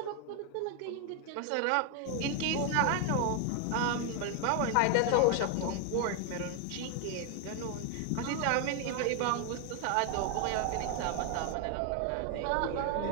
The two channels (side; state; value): both; different; correlation 0.01